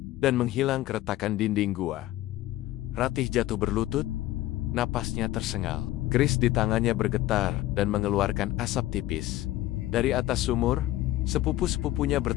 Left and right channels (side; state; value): right; quieter; 15.5 dB